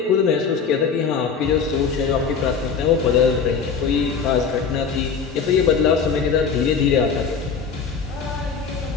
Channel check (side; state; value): right; quieter; 5.9 dB